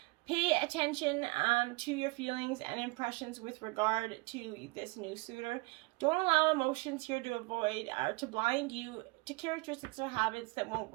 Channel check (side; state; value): left; quieter; 26.1 dB